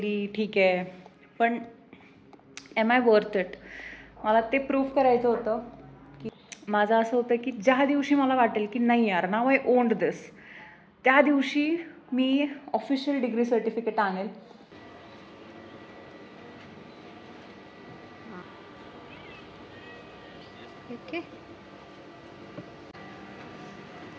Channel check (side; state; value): both; identical; correlation 1.00